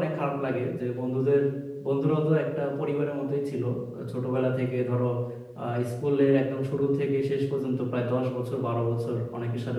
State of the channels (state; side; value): identical; both; correlation 1.00